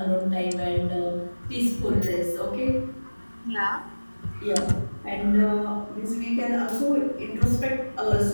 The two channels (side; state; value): both; inverted; correlation -1.00